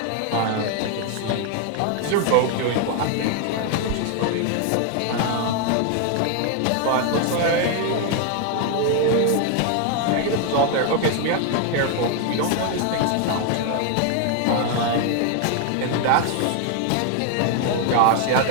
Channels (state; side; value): different; both; correlation 0.01